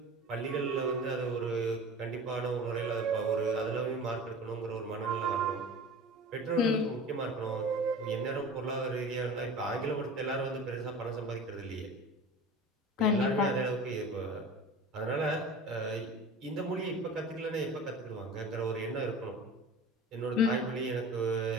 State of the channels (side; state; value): both; normal; correlation 0.36